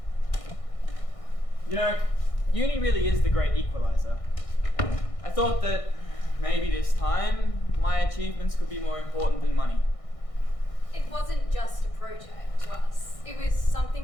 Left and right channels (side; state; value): right; late; 1.6 ms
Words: You know, uni really is the great equalizer. I thought that maybe this time my achievements could be more important than money. It wasn't just a project to us. It was